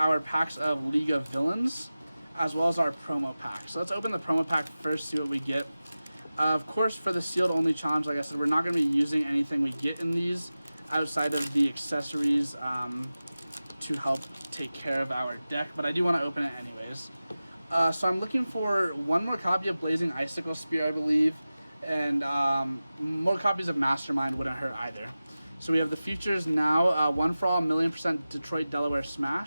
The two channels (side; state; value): both; inverted; correlation -0.96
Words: packs of League of Villains, as well as our promo pack. So let's open the promo pack first, see what we get. Of course, for the sealed only challenge, like I said, we're not going to be using anything we get in these outside of the accessories to help take care of our deck, but I do want to open it anyways. So I'm looking for one more copy of Blazing Icicle Spear, I believe, and more copies of Mastermind wouldn't hurt either. So we have the features now, One for All, 1,000,000% Detroit Delaware